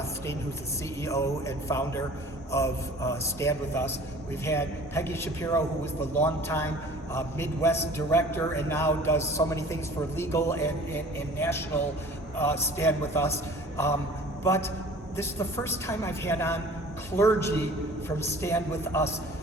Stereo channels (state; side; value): normal; both; correlation 0.46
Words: who's the CEO and founder of Stand With Us. We've had Peggy Shapiro, who was the longtime Midwest director and now does so many things for legal and national Stand With Us. But this is the first time I've had on clergy from Stand With Us.